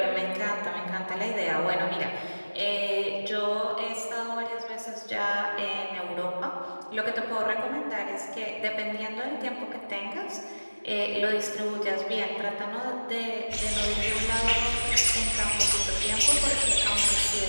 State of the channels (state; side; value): inverted; both; correlation -1.00